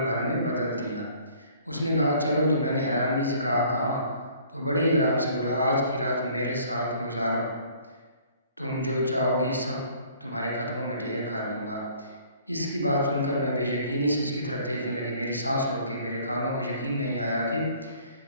بھر میں بدل دیا۔ اس نے کہا، چلو، تو میں نے حیرانگی سے کہا، تو بڑے ہی آرام سے بولا، آج کی رات میرے ساتھ گزارو، تم جو چاہو گی سب تمہارے قدموں میں ڈھیر کر دوں گا۔ اس کی بات سن کر میں بے یقینی سے اس کی طرف دیکھنے لگی۔ میری سانس رک گئی، میرے کانوں کو یقین نہیں آیا کہ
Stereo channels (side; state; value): both; inverted; correlation -0.55